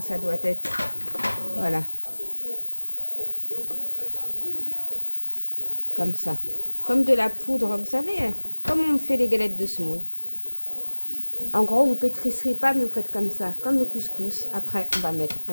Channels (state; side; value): inverted; both; correlation -1.00